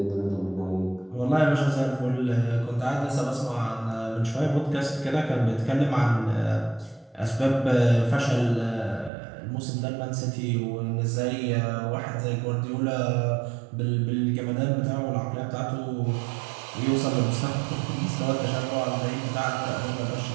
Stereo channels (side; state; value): left; drops out; at 9.1 s